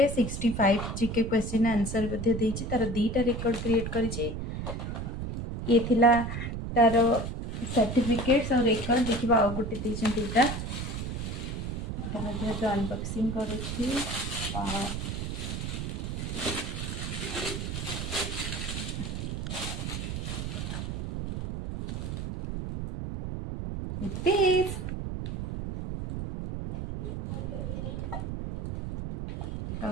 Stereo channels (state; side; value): noise; right; rumble, 5 dB below the sound